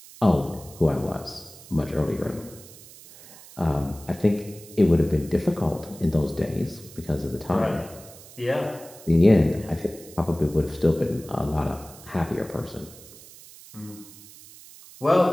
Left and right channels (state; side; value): noise; right; hiss, 19 dB below the sound